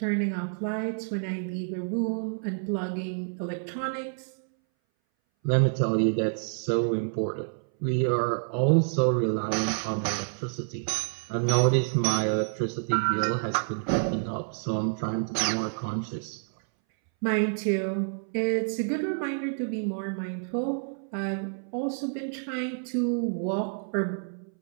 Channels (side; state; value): left; silent; 59 dB below the other